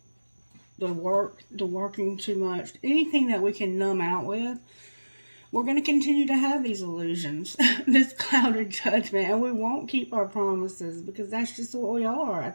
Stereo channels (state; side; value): inverted; both; correlation -1.00